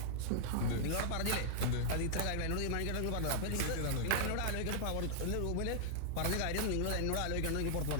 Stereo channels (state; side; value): different; both; correlation -0.01